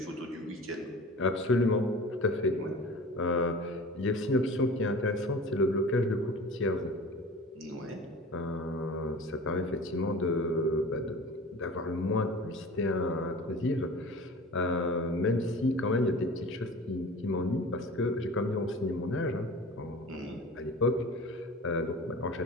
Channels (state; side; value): normal; both; correlation 0.39